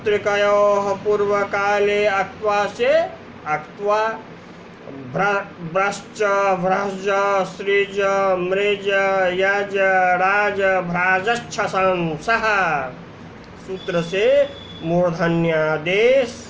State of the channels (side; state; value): both; identical; correlation 1.00